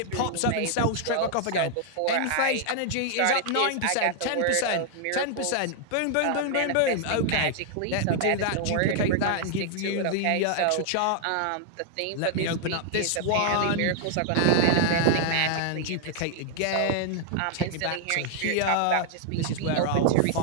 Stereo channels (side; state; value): both; different; correlation 0.00